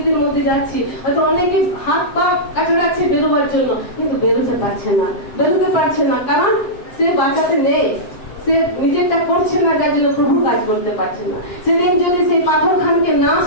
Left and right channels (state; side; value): late; right; 7.8 ms